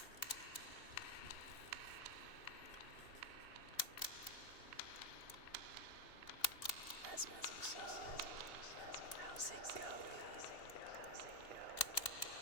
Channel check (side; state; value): right; late; 2.7 ms